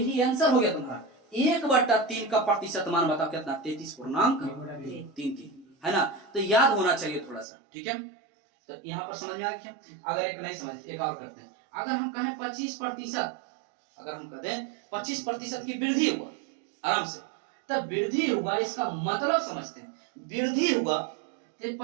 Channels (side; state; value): left; drops out; at 7.5 s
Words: आंसर हो गया तुम्हारा। 1/3 का प्रतिशत मान बताओ कितना, 33.33, है ना। तो याद होना चाहिए थोड़ा सा, ठीक है। तो यहाँ पर समझ में आ गया। अगर एक नहीं समझ, एक और करते हैं। अगर हम कहें 25%, अगर हम कहते हैं 25% की वृद्धि हुआ, आराम से, तब वृद्धि हुआ इसका मतलब समझते हैं। वृद्धि हुआ तो